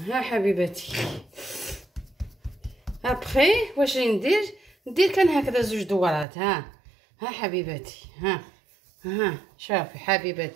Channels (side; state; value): left; drops out; at 6.2 s